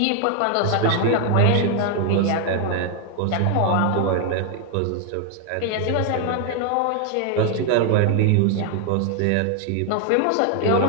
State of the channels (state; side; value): different; both; correlation 0.00